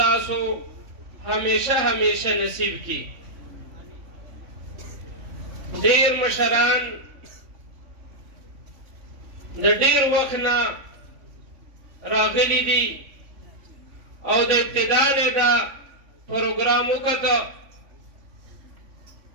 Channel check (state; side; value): late; left; 3.5 ms